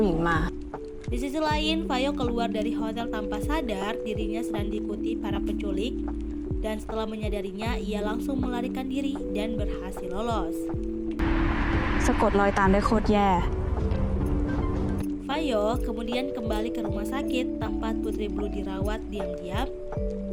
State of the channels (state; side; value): identical; both; correlation 1.00